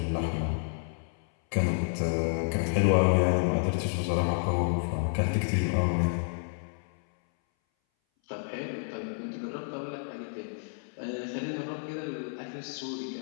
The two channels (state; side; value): silent; right; 58 dB below the other